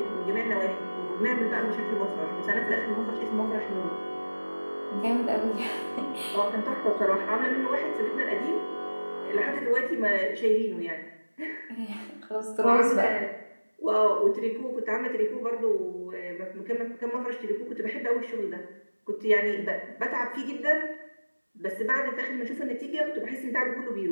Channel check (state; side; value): inverted; both; correlation -1.00